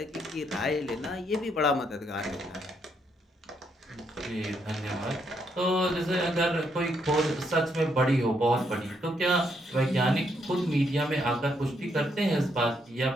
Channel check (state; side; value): normal; both; correlation 0.75